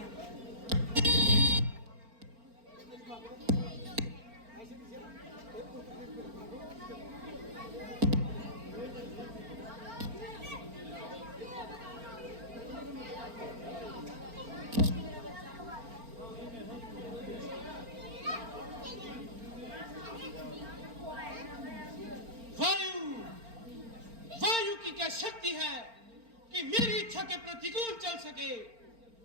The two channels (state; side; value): late; left; 4.4 ms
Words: वायु की क्या शक्ति है कि मेरी इच्छा के प्रतिकूल चल सके,